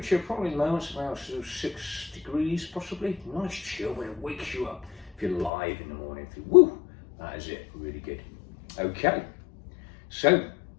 probably lows around 6 degrees possibly. Nice chill, but it wakes you up if you're live in the morning. Woo, that is it, really good. Okay, so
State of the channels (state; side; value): drops out; right; at 5.5 s